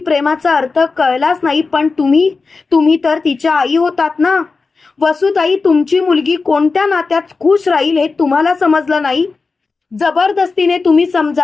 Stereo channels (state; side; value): quieter; right; 4.3 dB